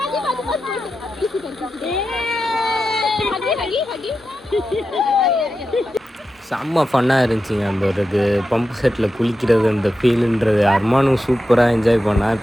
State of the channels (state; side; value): normal; both; correlation 0.90